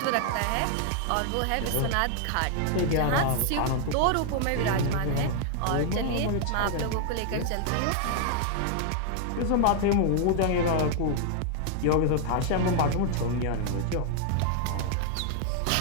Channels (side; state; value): both; different; correlation 0.00